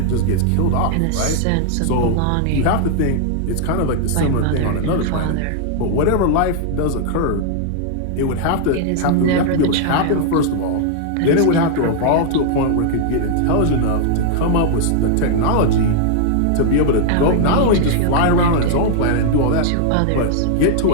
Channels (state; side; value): different; both; correlation -0.01